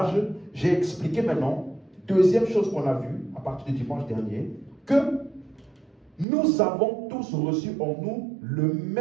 j'ai expliqué maintenant, deuxième chose qu'on a vue à partir du dimanche dernier, que nous avons tous reçu en nous le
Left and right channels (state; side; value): drops out; left; at 6.2 s